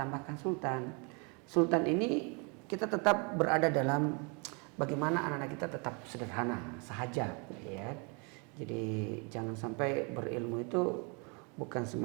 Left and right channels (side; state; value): left; quieter; 33.5 dB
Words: Sultan. Sultan ini kita tetap berada dalam bagaimana anak-anak kita tetap sederhana, sahaja ya. Jadi jangan sampai berilmu itu bukan